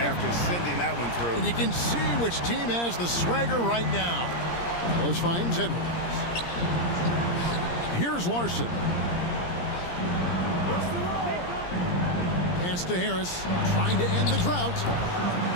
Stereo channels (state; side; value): late; right; 17 ms